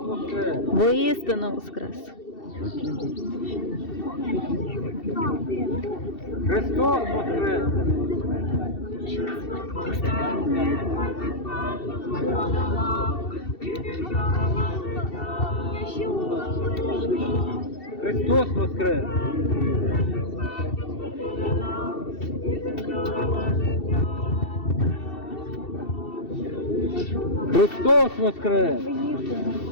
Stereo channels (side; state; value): right; late; 2.7 ms